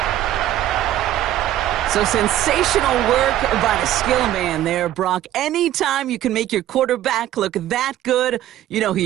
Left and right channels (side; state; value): left; quieter; 12.9 dB